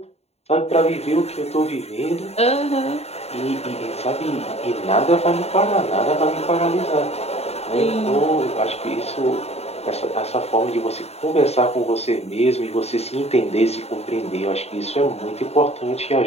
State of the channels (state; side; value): late; right; 0.30 ms